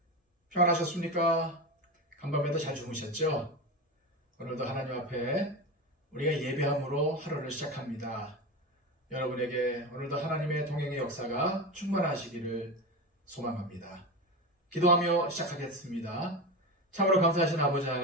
평안하셨습니까? 간밤에도 잘 주무셨죠? 오늘도 하나님 앞에 우리가 예배함으로 하루를 시작합니다. 여러분에게 오늘도 하나님의 동행의 역사가 충만하시기를 소망합니다. 기도하며 시작하겠습니다. 참으로 감사하신 아버지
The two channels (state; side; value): normal; both; correlation 0.22